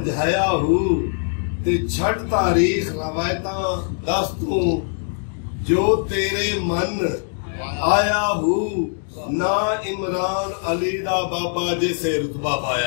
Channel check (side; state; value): right; silent; 64 dB below the other